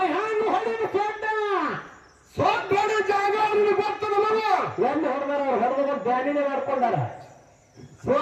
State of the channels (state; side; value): identical; both; correlation 1.00